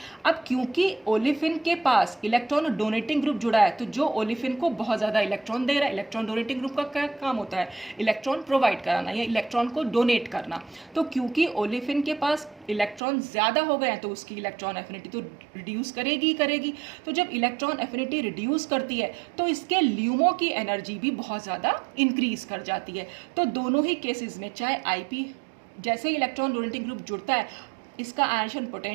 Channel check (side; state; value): left; drops out; at 13.0 s